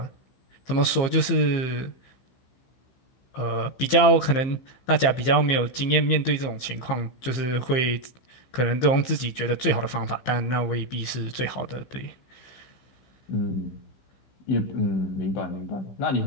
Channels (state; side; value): late; right; 15 ms